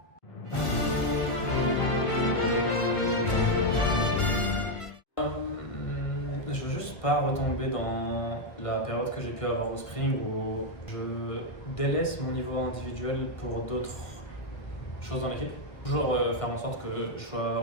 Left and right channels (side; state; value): right; late; 1.5 ms